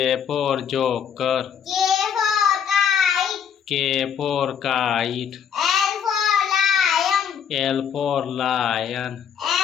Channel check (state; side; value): quieter; right; 7.9 dB